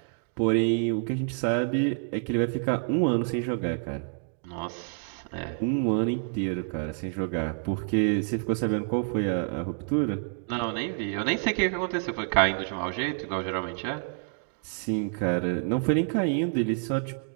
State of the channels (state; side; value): silent; left; 59 dB below the other